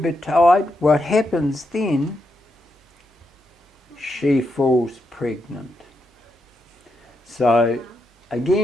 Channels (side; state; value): both; normal; correlation 0.83